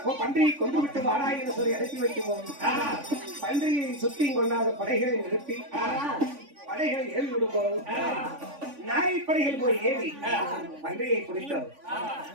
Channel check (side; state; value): left; late; 3.5 ms